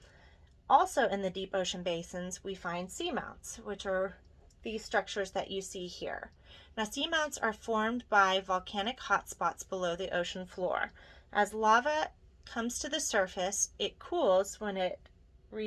Also in the deep ocean basins, we find seamounts, which are these structures that you see here. Now, seamounts are formed by volcanic hotspots below the ocean floor. As lava comes to the surface, it cools when it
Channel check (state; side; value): identical; both; correlation 1.00